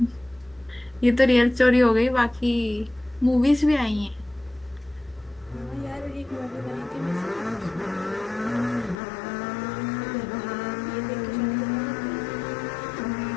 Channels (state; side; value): drops out; right; at 9.0 s